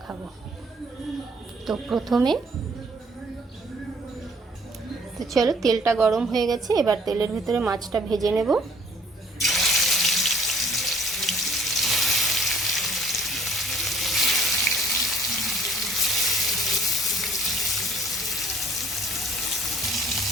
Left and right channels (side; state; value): both; normal; correlation 0.58